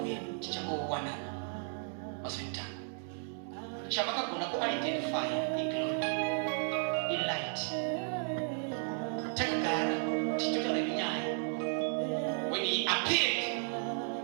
chichangowanana mazvinotanga. Chavakagona kuidentify iglory, ilight. Takagara tichitotaura nenyaya. When he appeared,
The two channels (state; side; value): silent; left; 55 dB below the other